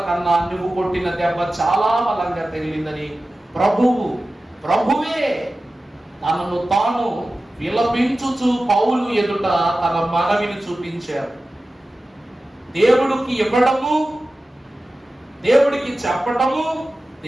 కన్నా నువ్వు కొట్టిన దెబ్బ చాలా బలంగా తగిలిందని ప్రభువే తనను తాను విలపించుచు పౌలు ఎదుట తన మనవిని చూపించారు. దేవుడికి ఇవ్వడము, దేవుడికి చెప్పటము,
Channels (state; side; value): normal; both; correlation 0.95